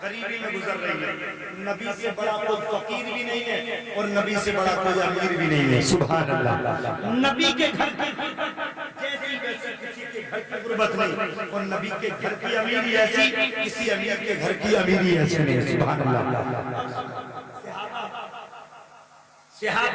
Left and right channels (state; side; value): identical; both; correlation 1.00